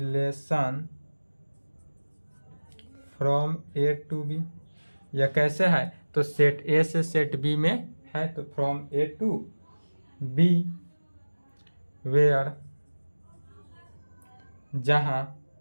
from A to B. यह कैसे है? तो सेट ए से सेट बी में है, तो from A to B, where जहाँ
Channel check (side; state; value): both; inverted; correlation -1.00